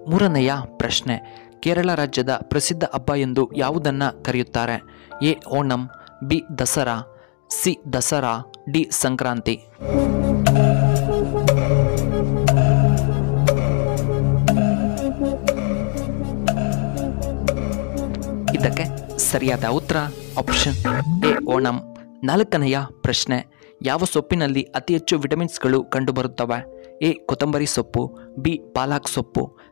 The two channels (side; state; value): right; quieter; 37.9 dB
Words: ಮೂರನೆಯ ಪ್ರಶ್ನೆ, ಕೇರಳ ರಾಜ್ಯದ ಪ್ರಸಿದ್ಧ ಹಬ್ಬ ಎಂದು ಯಾವುದನ್ನ ಕರೆಯುತ್ತಾರೆ? A Onam, B Dasara, C Dasara, D Sankranti. ಇದಕ್ಕೆ ಸರಿಯಾದ ಉತ್ತರ ಆಪ್ಷನ್ ಎ ಓಣಂ. ನಾಲ್ಕನೆಯ ಪ್ರಶ್ನೆ, ಯಾವ ಸೊಪ್ಪಿನಲ್ಲಿ ಅತಿ ಹೆಚ್ಚು ವಿಟಮಿನ್ಸ್ಗಳು ಕಂಡುಬರುತ್ತವೆ? ಎ ಕೊತ್ತಂಬರಿ ಸೊಪ್ಪು, ಬಿ ಪಾಲಕ್ ಸೊಪ್ಪು,